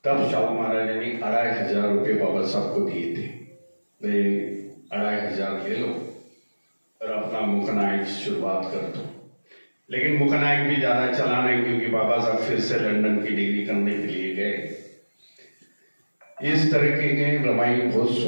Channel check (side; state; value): both; inverted; correlation -1.00